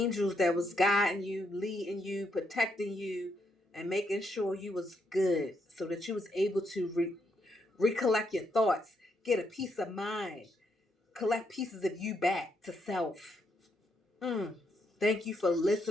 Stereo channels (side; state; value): both; normal; correlation 0.77